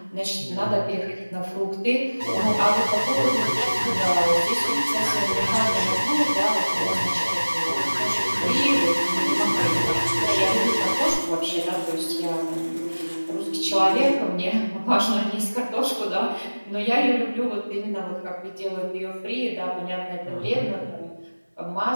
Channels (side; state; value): both; inverted; correlation -1.00